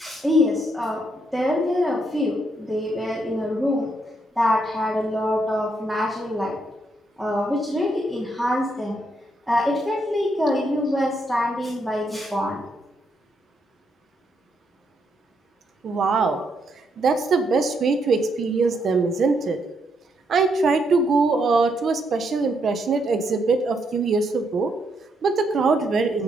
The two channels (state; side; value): normal; both; correlation 0.77